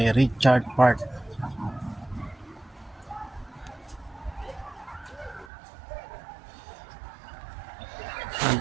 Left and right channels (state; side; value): drops out; left; at 5.5 s